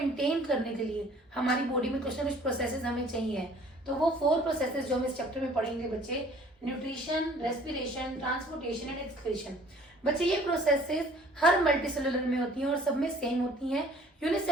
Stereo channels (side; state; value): both; normal; correlation 0.53